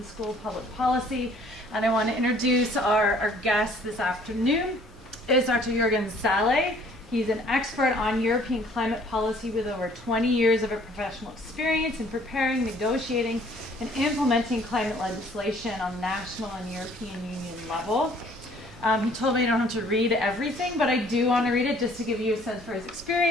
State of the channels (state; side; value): normal; both; correlation 0.57